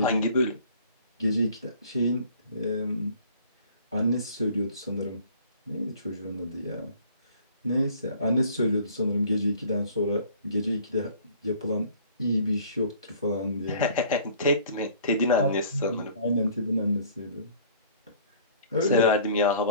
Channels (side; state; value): both; inverted; correlation -0.52